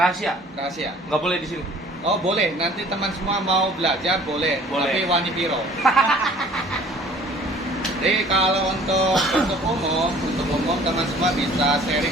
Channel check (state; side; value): normal; both; correlation 0.51